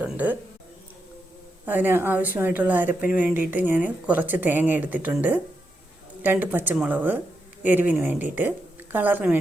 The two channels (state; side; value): normal; both; correlation 0.84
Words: അതിന് ആവശ്യമായിട്ടുള്ള അരപ്പിന് വേണ്ടിയിട്ട് ഞാൻ കുറച്ച് തേങ്ങ എടുത്തിട്ടുണ്ട്, 2 പച്ചമുളക് എരിവിന് വേണ്ടിയിട്ട്, കളറിന്